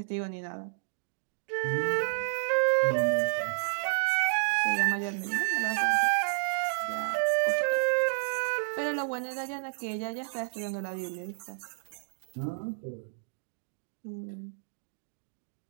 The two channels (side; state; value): left; silent; digital silence